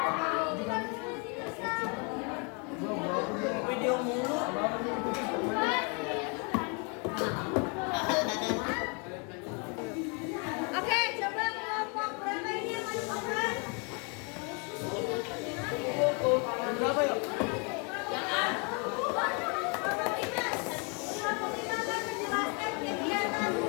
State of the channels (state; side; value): quieter; right; 34.5 dB